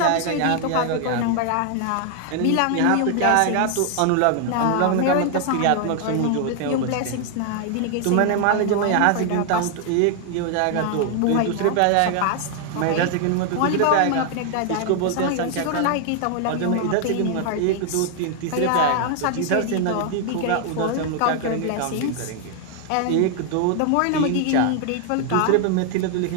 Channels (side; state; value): both; different; correlation 0.00